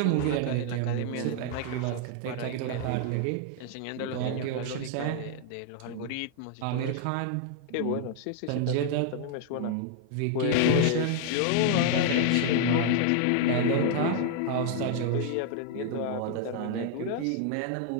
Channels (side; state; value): both; different; correlation 0.00